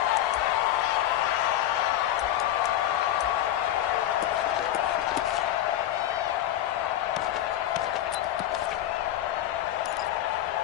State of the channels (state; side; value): quieter; right; 12.6 dB